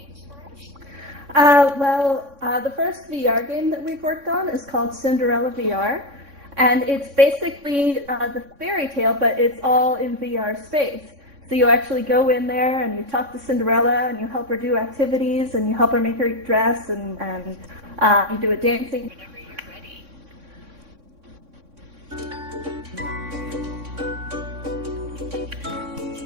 The first VR game that we've worked on is called Cinderella VR, and it's basically the fairy tale, but it's all in VR space. So you actually go in there and you talk to Cinderella and you help her do activities and you help her make her dress and you do a dancing.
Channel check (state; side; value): late; left; 3.6 ms